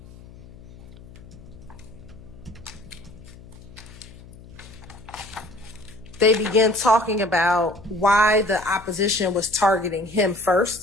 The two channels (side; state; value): left; noise; hum, 19 dB below the sound